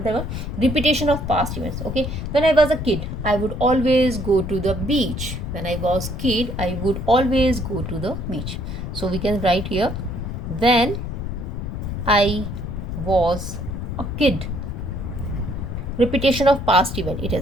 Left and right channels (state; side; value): noise; left; rumble, 5 dB below the sound